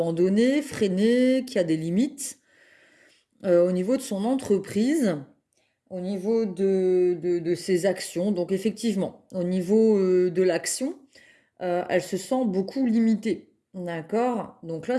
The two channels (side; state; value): both; identical; correlation 1.00